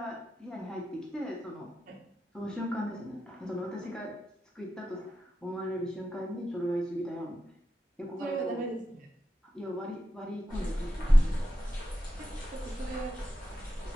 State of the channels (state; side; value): normal; both; correlation 0.89